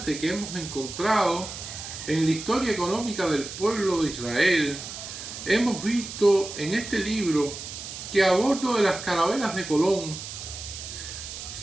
que hemos encontrado en la historia económica del pueblo de Israel, hemos visto en este libro que a bordo de las carabelas de Colón,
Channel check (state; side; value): noise; right; hiss, 10 dB below the sound